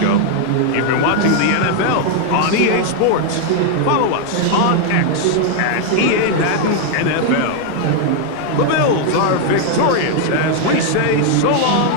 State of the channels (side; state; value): both; different; correlation 0.00